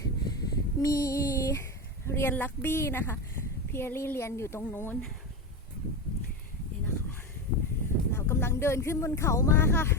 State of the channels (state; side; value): normal; both; correlation 0.18